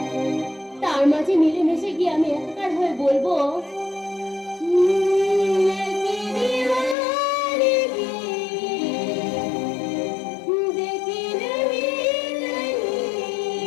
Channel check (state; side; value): drops out; right; at 7.0 s